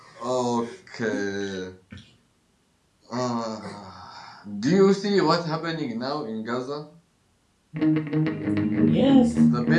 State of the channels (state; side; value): identical; both; correlation 1.00